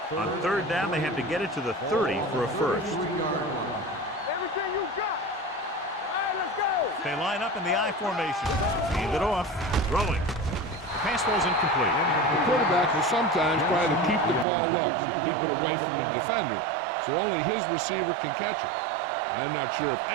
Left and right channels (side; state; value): left; drops out; at 14.5 s